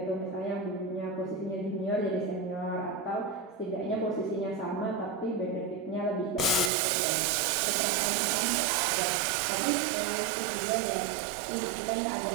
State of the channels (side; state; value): left; drops out; at 6.7 s